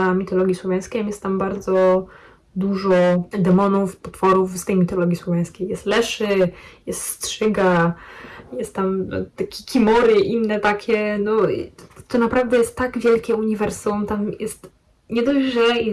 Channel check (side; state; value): both; identical; correlation 1.00